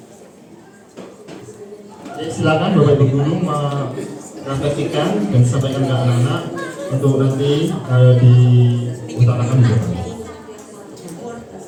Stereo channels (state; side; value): identical; both; correlation 1.00